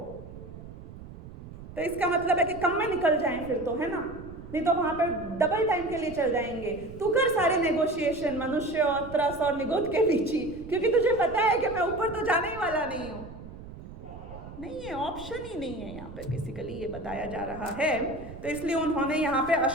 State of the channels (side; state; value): right; noise; rumble, 14 dB below the sound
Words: तो इसका मतलब है कि कम में निकल जाएं फिर तो, है ना, नहीं तो वहां पर डबल टाइम के लिए चल जाएंगे। तू कर सारे नेगोशिएशन मनुष्य और त्रस और निगोद के बीच ही, क्योंकि तुझे पता है कि मैं ऊपर तो जाने ही वाला नहीं हूं। नहीं है, ऑप्शन ही नहीं है यहाँ पे, बेसिकली ये बताया जा रहा है। तो इसलिए उन्होंने यहाँ पे